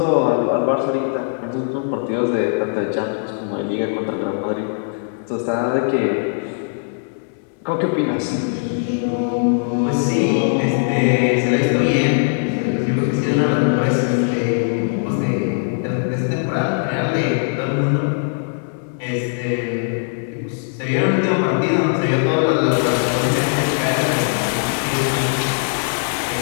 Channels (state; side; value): silent; right; digital silence